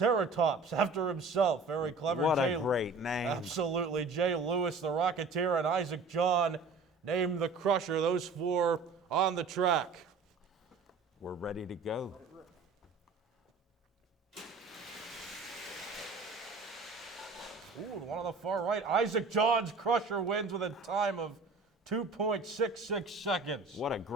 after himself. Very clever. What a great name. Absolutely. Jay Lewis, the Rocketeer, and Isaac John named the Crusher. Those 4 on the track. We're ready to go. Ooh, one on the far right. Isaac John's Crusher wins with a time of 2.66 seconds. What a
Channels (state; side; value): quieter; left; 4.0 dB